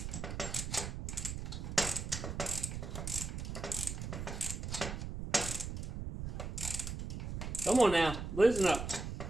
Come on now, loosen up.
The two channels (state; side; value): noise; right; rumble, 5 dB below the sound